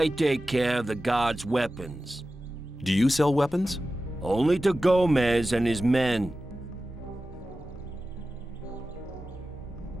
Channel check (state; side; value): normal; both; correlation 0.94